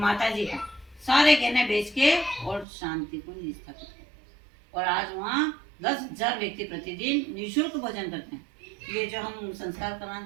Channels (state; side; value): drops out; left; at 2.7 s